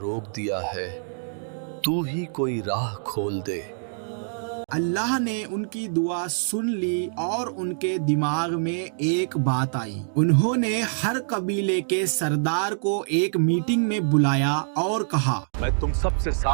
दिया है, तू ही कोई राह खोल दे। अल्लाह ने उनकी दुआ सुन ली और उनके दिमाग में एक बात आई। उन्होंने हर कबीले के सरदार को एक मीटिंग में बुलाया और कहा, मैं तुम सबसे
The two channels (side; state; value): left; silent; digital silence